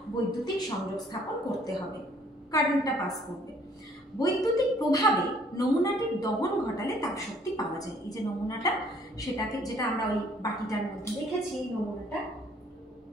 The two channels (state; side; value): normal; both; correlation 0.60